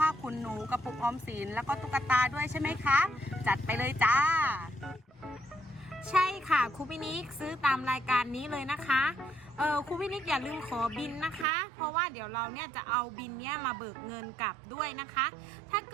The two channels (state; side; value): drops out; left; at 11.5 s